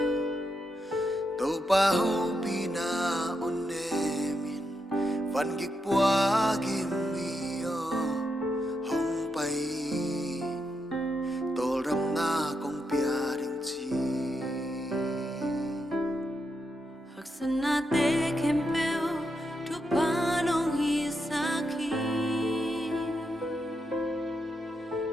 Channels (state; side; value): normal; both; correlation 0.84